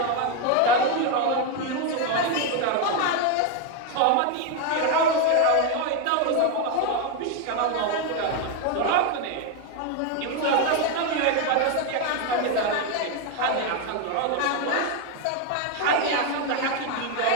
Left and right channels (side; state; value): both; different; correlation 0.02